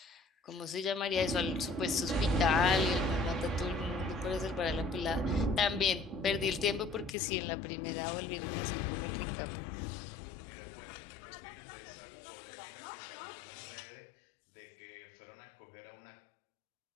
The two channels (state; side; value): drops out; right; at 7.2 s